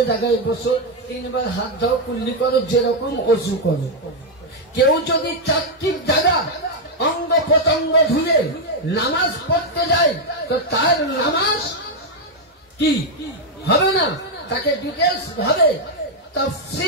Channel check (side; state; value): both; normal; correlation 0.01